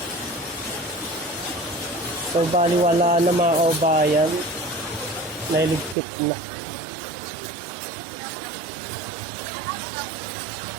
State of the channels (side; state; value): left; drops out; at 6.0 s